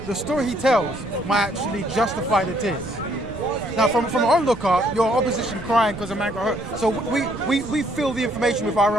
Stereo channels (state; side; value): noise; right; rumble, 15 dB below the sound